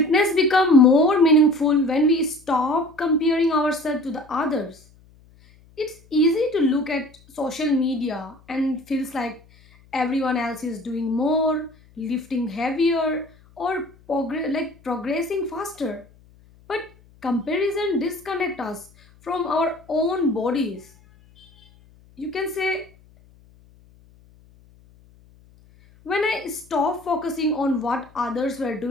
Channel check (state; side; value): noise; left; hum, 28 dB below the sound